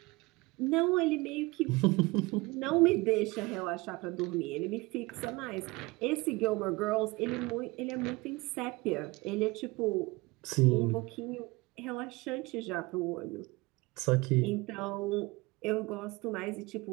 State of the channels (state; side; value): quieter; left; 23.3 dB